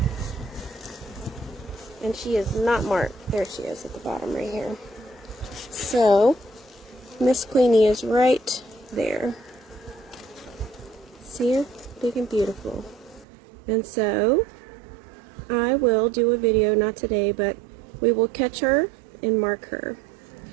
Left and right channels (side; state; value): left; drops out; at 13.2 s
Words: And she is not marked. There she is at the bottom right here. So, Miss Queenie is right there. See her? Big and beautiful. And so, I will do a video, not today, but we will catch her and mark her.